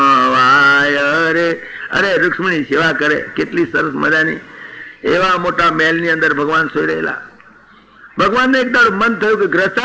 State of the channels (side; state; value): both; identical; correlation 1.00